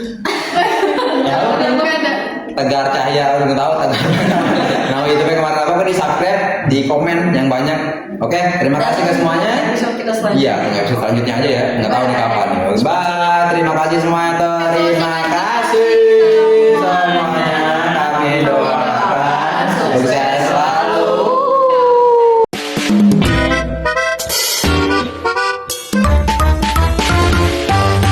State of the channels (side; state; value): both; identical; correlation 1.00